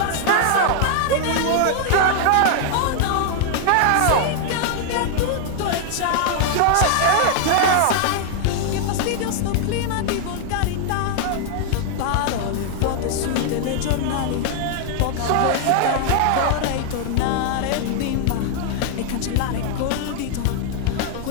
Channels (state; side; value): different; both; correlation 0.00